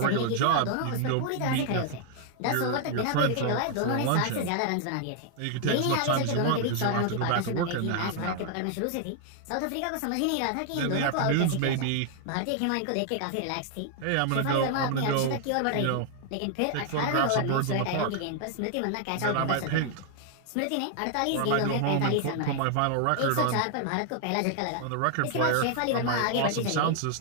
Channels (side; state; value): both; different; correlation 0.00